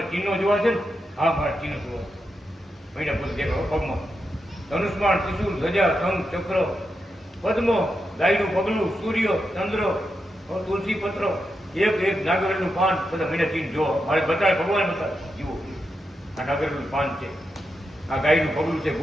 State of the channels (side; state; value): both; normal; correlation 0.86